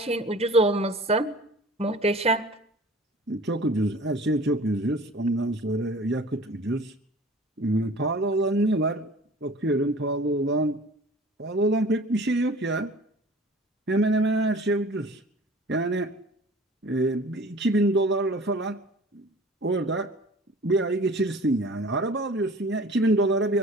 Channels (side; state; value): both; normal; correlation 0.44